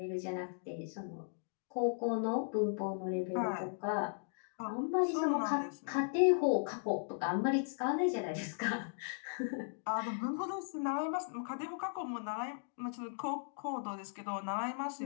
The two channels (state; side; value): silent; right; digital silence